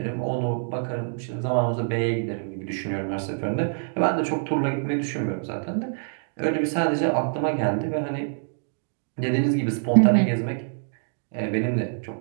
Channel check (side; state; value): left; silent; digital silence